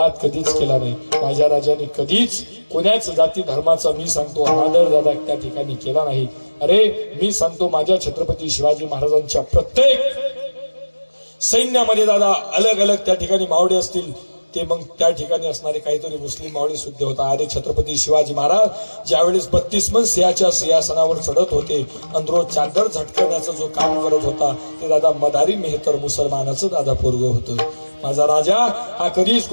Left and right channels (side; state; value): both; inverted; correlation -1.00